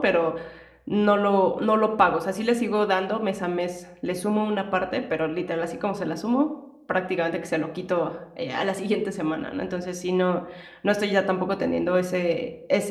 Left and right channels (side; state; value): both; identical; correlation 1.00